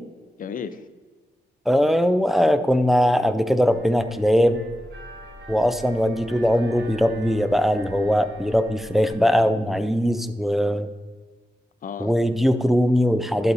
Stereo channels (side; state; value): both; normal; correlation 0.92